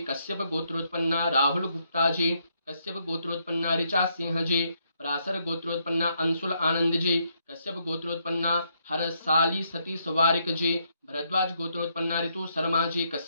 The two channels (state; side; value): inverted; both; correlation -0.75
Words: कश्यप गोत्रोत्पन्ना राहुल गुप्ता जी कश्यप गोत्रोत्पन्ना ऋचा सिंह जी पराशर गोत्रोत्पन्ना अंशुल आनंद जी कश्यप गोत्रोत्पन्ना हरसाली सतीश वारिक जी भरद्वाज गोत्रोत्पन्ना ऋतु शर्मा जी